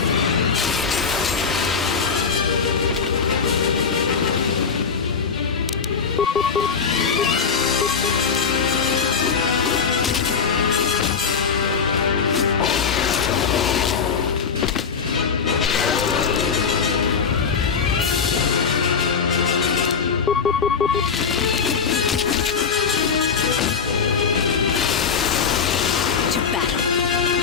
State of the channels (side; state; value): right; quieter; 6.0 dB